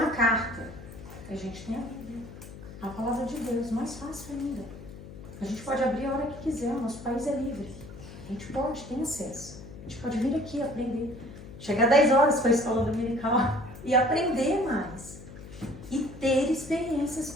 carta. A gente tem a Bíblia, a palavra de Deus, mais fácil ainda. A gente pode abrir a hora que quiser, o nosso país é livre. A gente pode, tem acesso. A gente pode vir aqui aprender. Chegar 10 horas para a escola dominical e aprender mais. E ter experiências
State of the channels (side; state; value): left; noise; hum, 15 dB below the sound